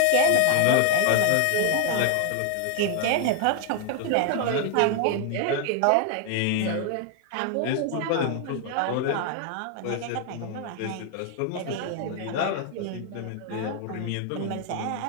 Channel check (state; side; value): different; both; correlation 0.00